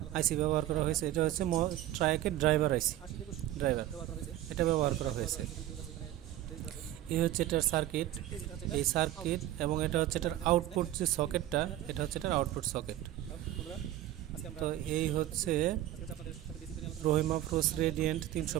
আইসি ব্যবহার করা হয়েছে। এটা হচ্ছে ট্রায়াকের ড্রাইভার আইসি, এটা ব্যবহার করা হয়েছে। এই হচ্ছে এটার সার্কিট, এই সার্কিট, এবং এটা হচ্ছে এটার আউটপুট যে সকেটটা, এটা হচ্ছে এটার আউটপুট সকেট। তো এই হচ্ছে Rahim Afroz radiant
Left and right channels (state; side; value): quieter; left; 13.6 dB